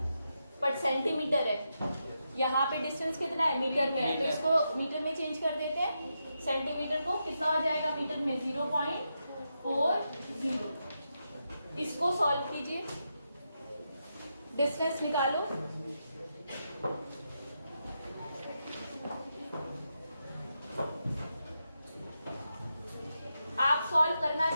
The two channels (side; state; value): both; inverted; correlation -0.85